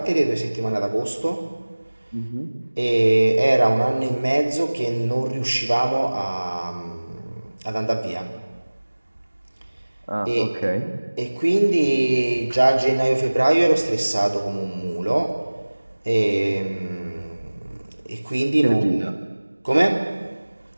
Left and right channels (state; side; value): inverted; both; correlation -1.00